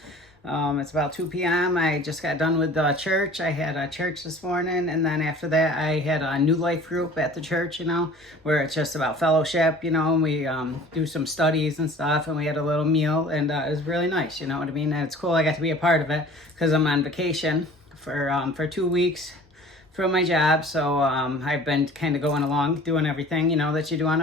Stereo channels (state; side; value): normal; both; correlation 0.46